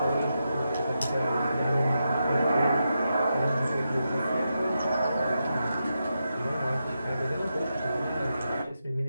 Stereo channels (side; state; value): both; inverted; correlation -0.86